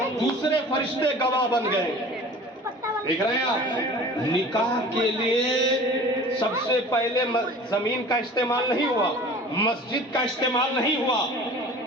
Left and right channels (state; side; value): normal; both; correlation 0.42